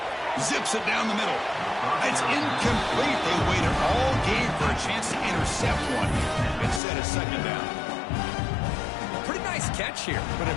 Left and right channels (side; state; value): right; drops out; at 6.8 s